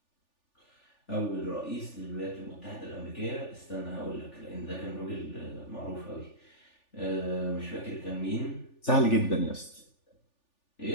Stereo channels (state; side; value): late; right; 3.4 ms